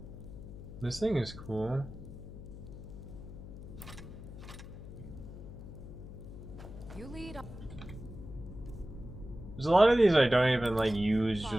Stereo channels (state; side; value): noise; left; hum, 12 dB below the sound